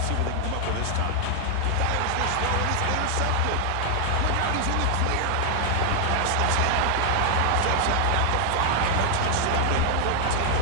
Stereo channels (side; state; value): both; different; correlation 0.00